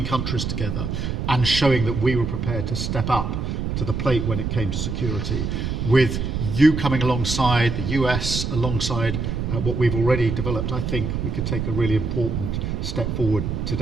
countries together and showing that we were prepared to step up to the plate when it came to security. With you coming alongside, the US alongside what we've already developed, I think we could take a really important step forward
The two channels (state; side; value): noise; right; rumble, 2 dB below the sound